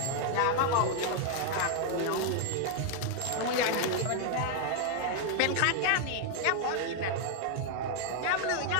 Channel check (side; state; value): both; different; correlation 0.00